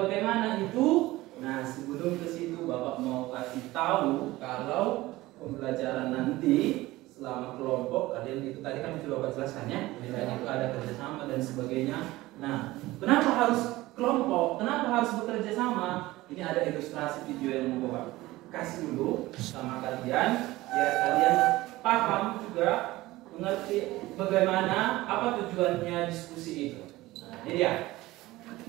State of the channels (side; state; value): left; quieter; 18.4 dB